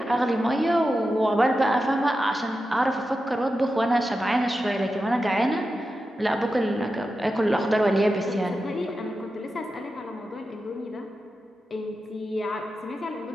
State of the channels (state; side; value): normal; both; correlation 0.91